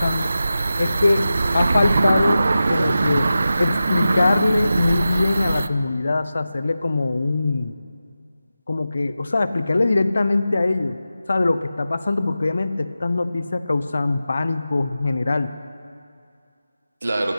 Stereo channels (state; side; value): inverted; both; correlation -0.93